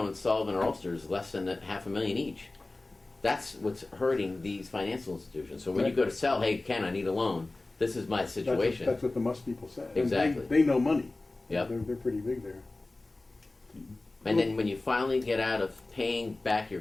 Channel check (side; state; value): right; quieter; 3.0 dB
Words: in Sullivan or Ulster is less than $500,000 each. That's what's hurting these financial institutions. So when you go to sell, hey, Ken, I need a loan. This is my situation. That's what the must people say. And Exactly. They know money. Yep. They're pretty big there. And then when you finally get out of paying back your